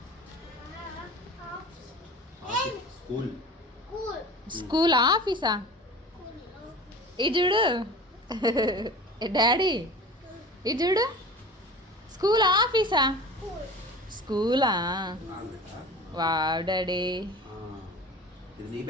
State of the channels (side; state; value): both; normal; correlation 0.38